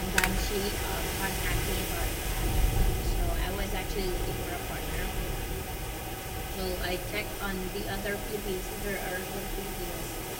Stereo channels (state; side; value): identical; both; correlation 1.00